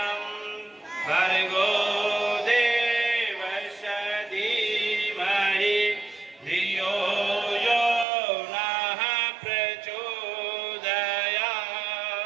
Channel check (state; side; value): drops out; left; at 8.1 s